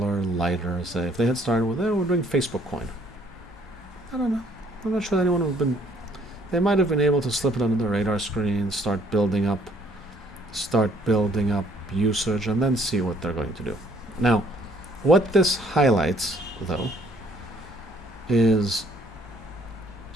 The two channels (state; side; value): normal; both; correlation 0.62